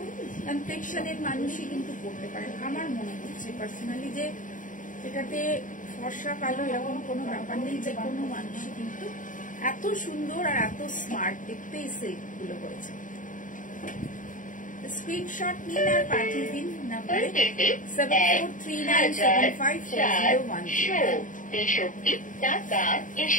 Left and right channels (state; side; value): late; right; 0.38 ms